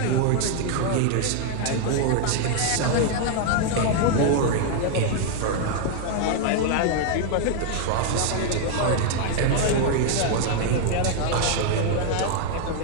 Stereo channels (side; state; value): both; different; correlation 0.00